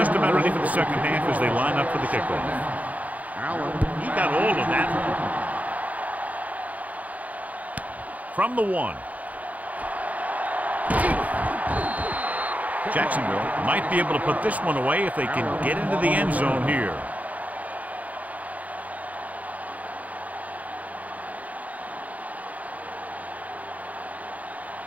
about ready for the second half as they line up for the kickoff. He got all of that. From the 1. Jacksonville might be able to put this one away if they can get into the end zone here.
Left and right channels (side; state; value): left; late; 0.072 ms